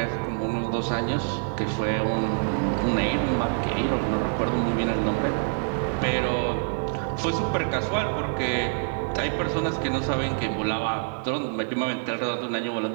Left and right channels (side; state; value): left; silent; 61 dB below the other